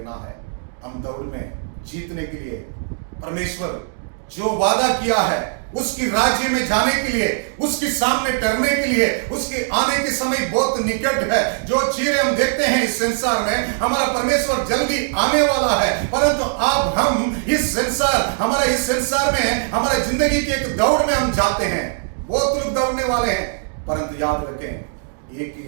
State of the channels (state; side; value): silent; left; digital silence